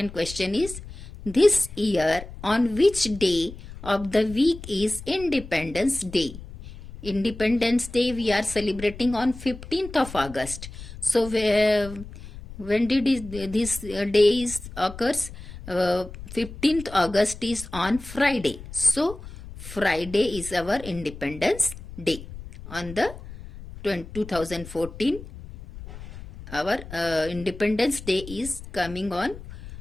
question is, this year on which day of the week is Independence Day? Independence Day we are celebrating on 15th of August. So when did this day is occurs? 15th August is on Friday. So Friday is our Independence Day. On the 2014, our Independence Day is coming on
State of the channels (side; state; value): left; noise; rumble, 14 dB below the sound